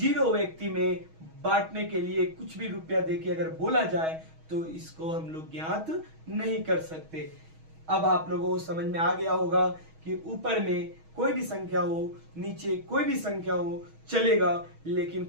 व्यक्ति में बांटने के लिए कुछ भी रुपया देके अगर बोला जाए तो इसको हम लोग ज्ञात नहीं कर सकते। अब आप लोगों को समझ में आ गया होगा कि ऊपर में कोई भी संख्या हो, नीचे कोई भी संख्या हो चलेगा, लेकिन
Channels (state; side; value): late; left; 6.3 ms